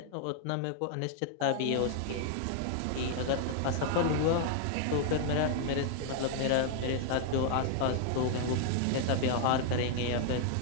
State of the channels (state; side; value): different; both; correlation 0.00